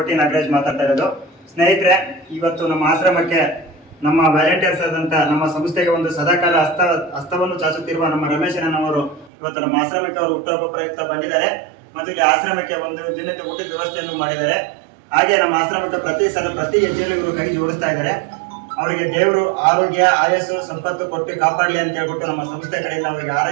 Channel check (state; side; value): drops out; left; at 9.3 s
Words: ನಾಗರಾಜ್ ಮಾತಾಡ್ತಾ ಇರೋದು. ಸ್ನೇಹಿತರೆ, ಇವತ್ತು ನಮ್ಮ ಆಶ್ರಮಕ್ಕೆ ನಮ್ಮ ವ್ಯಾಲಂಟಿಯರ್ಸ್ ಆದಂಥ ನಮ್ಮ ಸಂಸ್ಥೆಗೆ ಒಂದು ಸದಾಕಾಲ ಹಸ್ತವನ್ನು ಚಾಚುತ್ತಿರುವ ನಮ್ಮ ರಮೇಶನವರು ಇವತ್ತು ನಮ್ಮ ಆಶ್ರಮಕ್ಕೆ ಅವರು ಹುಟ್ಟುಹಬ್ಬ ಪ್ರಯುಕ್ತ ಬಂದಿದ್ದಾರೆ ಮತ್ತು ಇಲ್ಲಿ ಆಶ್ರಮಕ್ಕೆ ಒಂದು ದಿನದ ಊಟದ ವ್ಯವಸ್ಥೆಯನ್ನು ಮಾಡಿದ್ದಾರೆ. ಹಾಗೆ ನಮ್ಮ ಆಶ್ರಮಕ್ಕೆ ಪ್ರತಿ ಹೆಜ್ಜೆಯಲ್ಲೂ ಇವರು ಕೈ ಜೋಡಿಸ್ತಾ ಇದ್ದಾರೆ. ಅವರಿಗೆ ದೇವರು ಆರೋಗ್ಯ ಆಯಸ್ಸು ಸಂಪತ್ತು ಕೊಟ್ಟು ಕಾಪಾಡಲಿ ಅಂತ ಹೇಳ್ಬಿಟ್ಟು ನಮ್ಮ ಸಂಸ್ಥೆ ಕಡೆಯಿಂದ ಅವರಿಗೆ